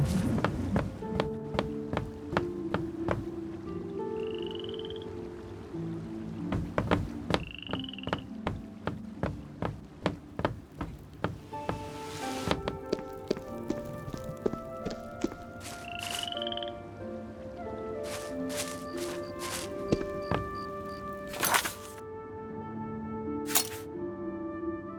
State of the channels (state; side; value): identical; both; correlation 1.00